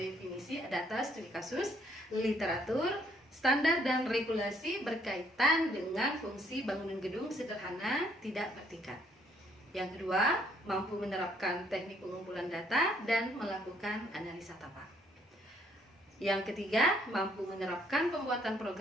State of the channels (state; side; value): normal; both; correlation 0.67